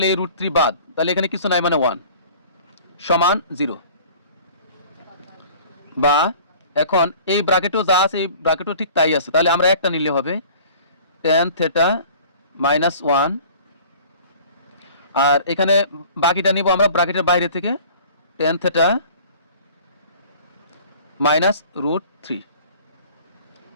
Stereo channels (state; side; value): inverted; both; correlation -0.47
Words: এই √3 বাদ, তাহলে এখানে কিছু নাই মানে 1 সমান 0। বা এখন এই ব্র্যাকেটও যা আছে এই ব্র্যাকেটও ঠিক তাই আছে, তাহলে আমরা একটা নিলে হবে টেন থিটা মাইনাস 1, আর এখানে বাকিটা নিব আমরা ব্র্যাকেটের বাইরে থেকে টেন থিটা মাইনাস √3